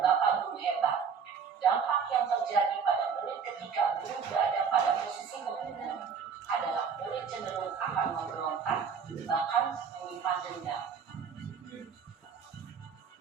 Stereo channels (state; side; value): quieter; left; 6.4 dB